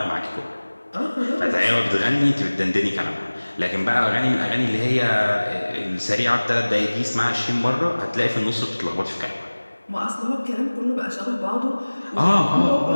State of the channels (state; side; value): inverted; both; correlation -1.00